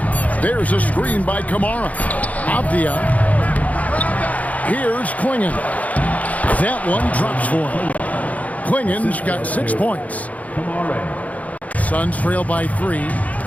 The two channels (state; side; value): late; right; 0.072 ms